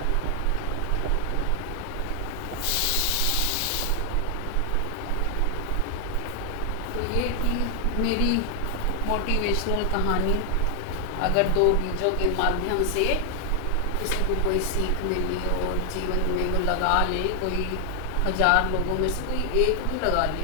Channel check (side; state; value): both; different; correlation 0.00